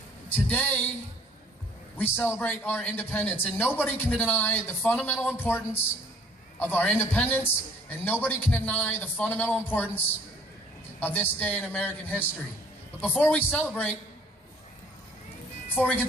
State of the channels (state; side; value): normal; both; correlation 0.57